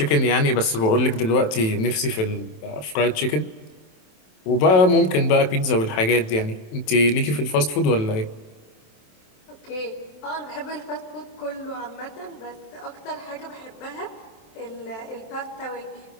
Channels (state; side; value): late; right; 27 ms